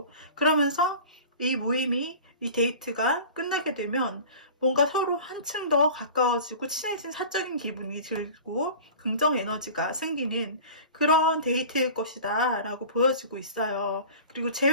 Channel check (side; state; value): both; inverted; correlation -0.39